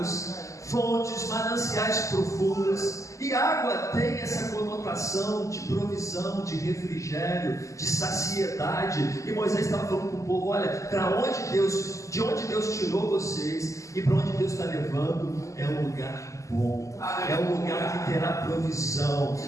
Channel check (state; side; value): late; right; 0.16 ms